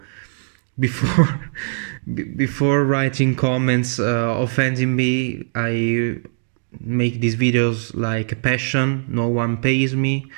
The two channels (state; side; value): silent; left; digital silence